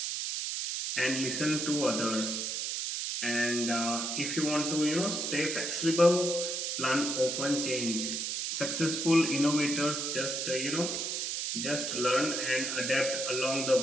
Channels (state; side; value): noise; right; hiss, 2 dB below the sound